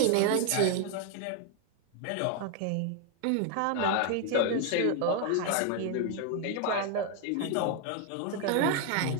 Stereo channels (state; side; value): different; both; correlation 0.01